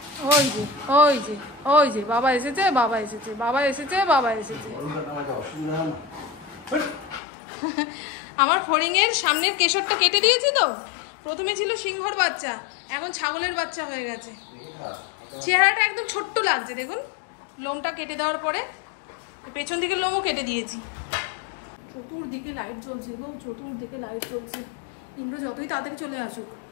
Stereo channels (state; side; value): drops out; right; at 7.2 s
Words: ওই যে ওই যে ওই যে বাবা এসেছে, বাবা এসেছে, বাবা এসেছে, বাবা এসেছে। আমার ফড়িংয়ের সামনের কেশরটা কেটে দিয়েছি তো। প্রথমে ছিল সিংহর বাচ্চা, এখন ছাগলের বাচ্চা হয়ে গেছে। চেহারাটা একদম ছোট্ট লাগছে দেখুন। লোমটা কেটে দেওয়ার পরে পেছন দিকে লোমও কেটে দিয়েছি। চতুর্দিকে লাইট জ্বলছে গো, চতুর্দিকে লাইট জ্বলছে। ইন্দ্র যতই তাড়াতাড়ি চলে আসুক,